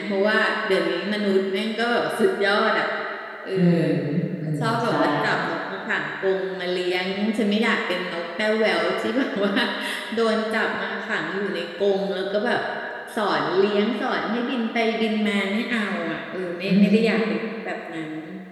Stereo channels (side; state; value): both; identical; correlation 1.00